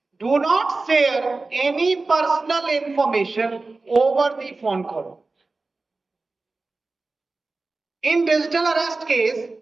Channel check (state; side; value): quieter; left; 3.6 dB